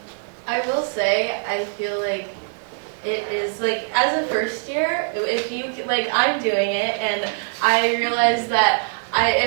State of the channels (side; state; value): left; silent; 64 dB below the other